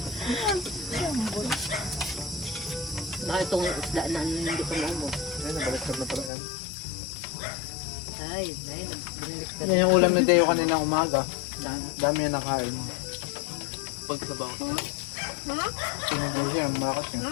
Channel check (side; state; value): right; drops out; at 6.3 s